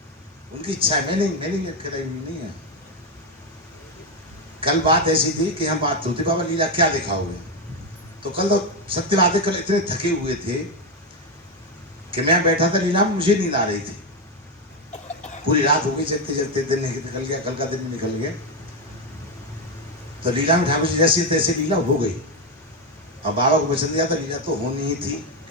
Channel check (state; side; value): normal; both; correlation 0.07